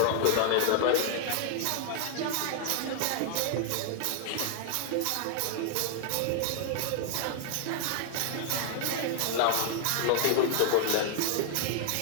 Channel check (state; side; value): different; both; correlation -0.01